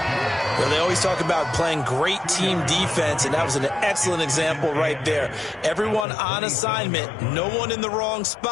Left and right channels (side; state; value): right; drops out; at 6.1 s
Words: Well, they always talk about playing great team defense, and that was an excellent example right there. Everyone on assignment, no one in the wrong